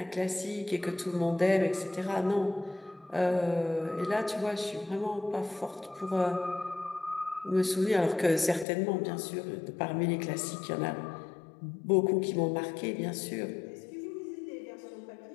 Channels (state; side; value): drops out; right; at 8.7 s